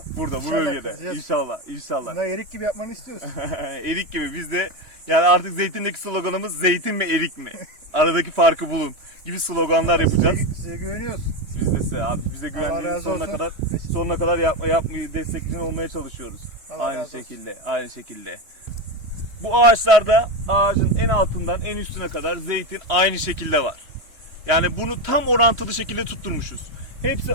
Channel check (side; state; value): left; late; 3.1 ms